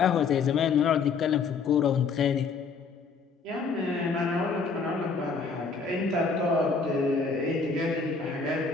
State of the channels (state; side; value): quieter; right; 5.0 dB